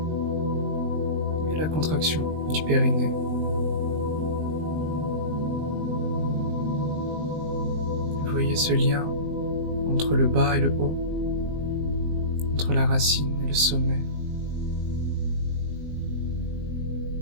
Et la contraction du périnée. Vous voyez ce lien entre le bas et le haut, entre la racine et le sommet.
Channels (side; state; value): left; late; 19 ms